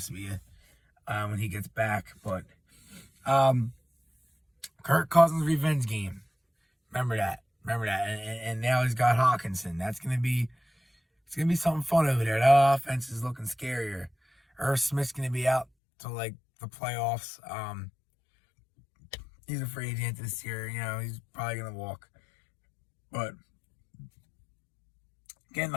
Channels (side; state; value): right; drops out; at 15.7 s